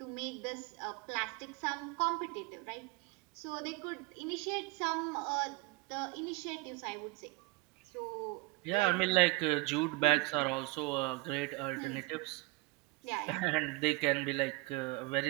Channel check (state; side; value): quieter; left; 22.0 dB